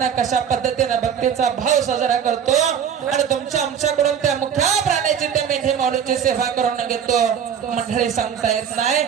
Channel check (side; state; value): left; quieter; 8.0 dB